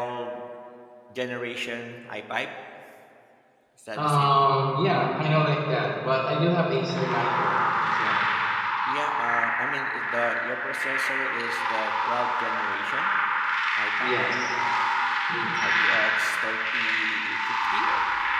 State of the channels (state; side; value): identical; both; correlation 1.00